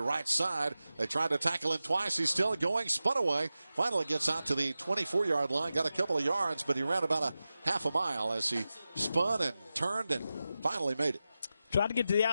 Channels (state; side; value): inverted; both; correlation -0.94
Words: right side. They tried to tackle him twice. He's still going. Spun away. Finally gets out to the 24-yard line. Got a couple of yards, but he ran about a half a mile as he spun and turned and finally made it. Tried to get to the